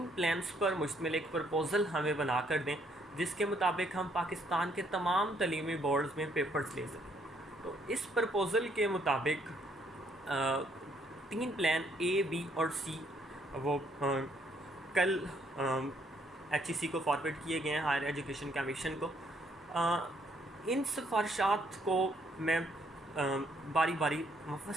प्लान्स पर मुश्तमिल एक प्रपोज़ल हमें बना कर दें जिसके मुताबिक हम पाकिस्तान के तमाम तलीमी बोर्ड्स में पेपर्स ले सकें। तो इस प्रपोज़ल के मुताबिक 3 प्लान ए, बी और सी वो कल HEC को फॉरवर्ड किए गए हैं हायर एजुकेशन कमीशन को। इन सिफारिशात को मैं बारी बारी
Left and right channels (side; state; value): both; normal; correlation 0.69